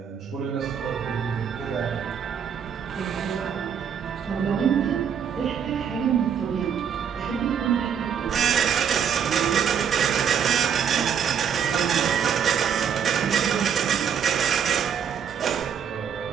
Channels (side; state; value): left; quieter; 7.9 dB